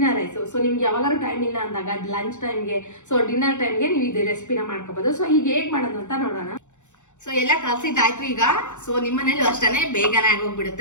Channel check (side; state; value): right; late; 0.84 ms